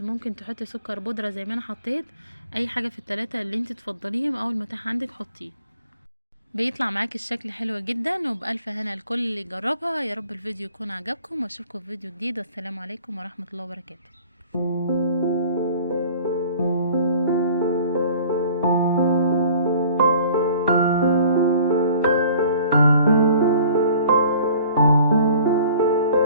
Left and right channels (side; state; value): both; inverted; correlation -0.50